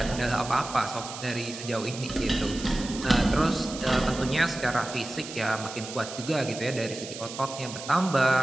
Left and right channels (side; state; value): right; noise; hiss, 11 dB below the sound